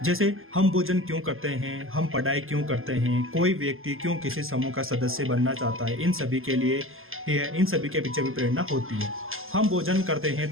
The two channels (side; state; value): left; late; 0.60 ms